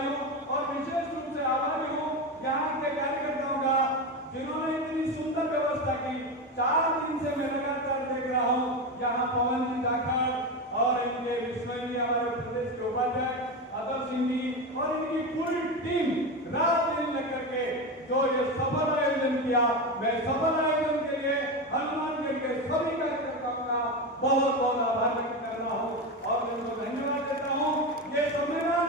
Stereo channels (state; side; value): normal; both; correlation 0.18